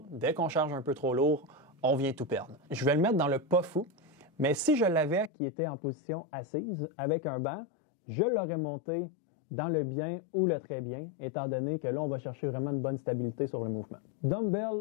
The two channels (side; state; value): right; drops out; at 5.3 s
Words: dès qu'on charge un peu trop lourd, on vient tout perdre. Je vais le mettre dans le pas fou, mais si je l'avais qui était en position assise avec un banc, je l'aurais monté dans le bien ou le très bien, étant donné que là, on va chercher vraiment une bonne stabilité sur le mouvement.